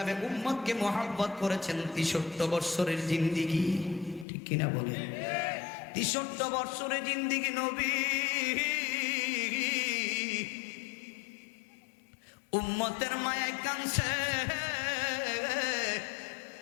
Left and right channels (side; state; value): right; drops out; at 4.2 s